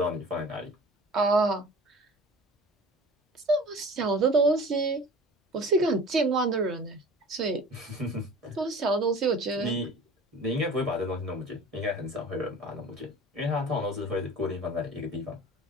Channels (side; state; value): both; normal; correlation 0.42